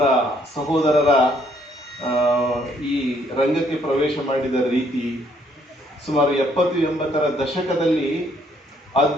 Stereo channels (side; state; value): both; normal; correlation 0.67